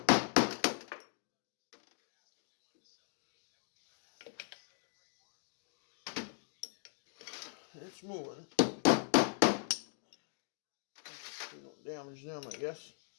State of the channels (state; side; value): silent; right; 52 dB below the other